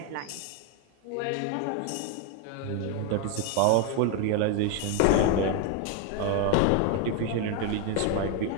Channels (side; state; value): both; different; correlation 0.01